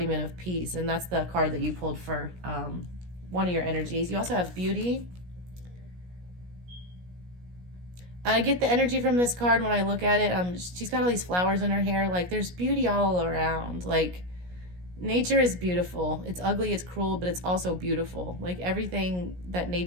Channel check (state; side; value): late; left; 17 ms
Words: of peace, and that's the card that you pulled for one of your energies. You also have beauty. I get the energy from this card when I look at it. She's got all these flowers in her hair. Like, there's beauty all around. Like, nature is beautiful. It's ugly, it's cruel, but it's also beautiful. Like, everything that